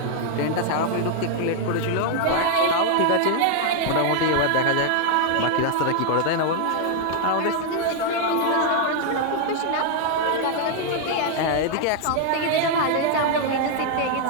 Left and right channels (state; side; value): different; both; correlation 0.00